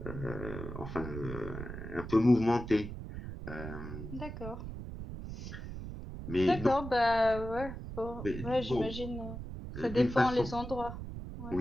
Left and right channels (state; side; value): noise; right; rumble, 9 dB below the sound